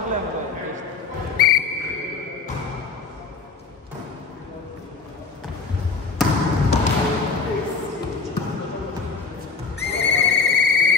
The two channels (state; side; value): quieter; right; 4.7 dB